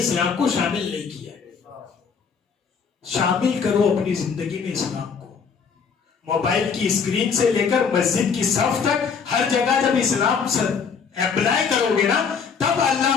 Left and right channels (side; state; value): right; quieter; 6.1 dB